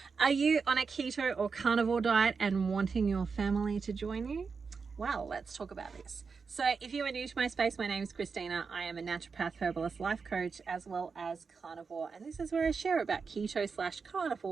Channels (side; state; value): left; quieter; 5.2 dB